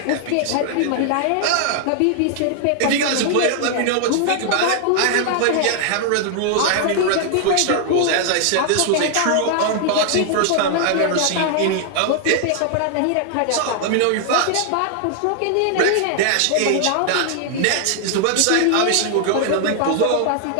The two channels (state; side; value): different; both; correlation 0.00